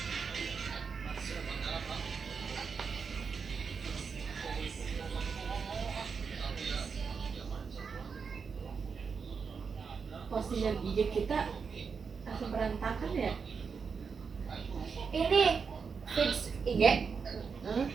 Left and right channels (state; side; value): quieter; left; 5.7 dB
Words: Postingan IG kita langsung berantakan ya. ini feeds IG